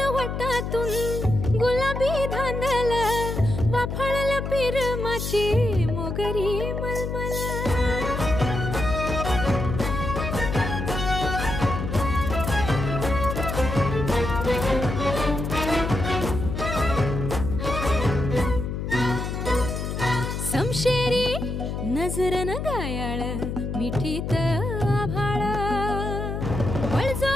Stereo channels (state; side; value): noise; left; hum, 4 dB below the sound